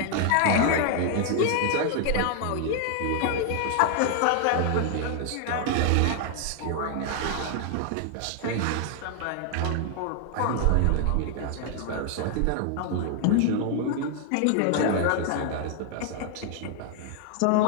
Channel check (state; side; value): different; both; correlation 0.00